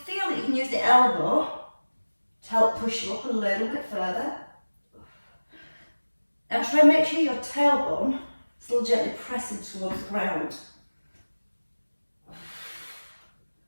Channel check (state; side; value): inverted; both; correlation -1.00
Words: that you can use the elbow to help push you up a little bit further. And try and make sure your tailbone is still gently pressing towards the ground.